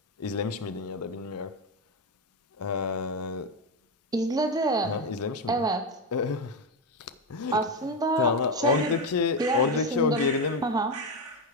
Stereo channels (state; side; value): normal; both; correlation 0.11